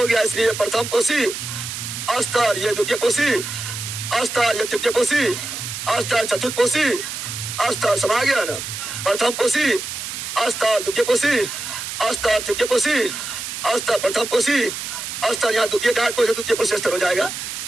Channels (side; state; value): right; noise; hiss, 6 dB below the sound